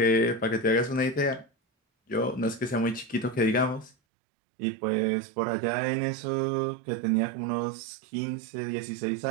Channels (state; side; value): drops out; left; at 3.9 s